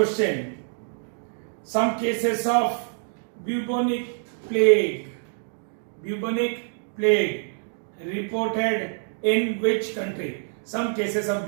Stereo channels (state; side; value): silent; left; 61 dB below the other